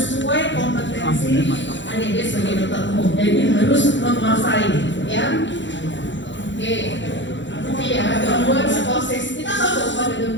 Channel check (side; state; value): right; late; 0.54 ms